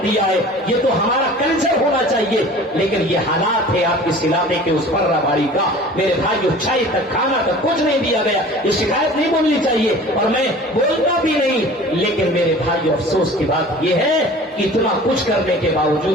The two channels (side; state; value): both; normal; correlation 0.43